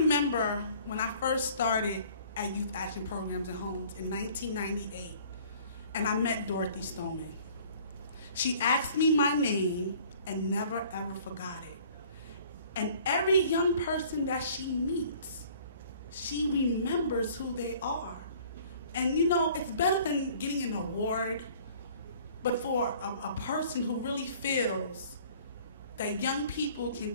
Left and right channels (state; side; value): inverted; both; correlation -0.53